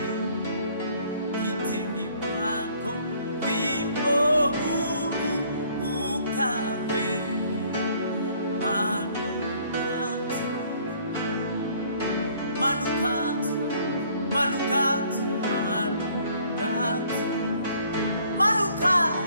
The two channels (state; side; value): inverted; both; correlation -0.60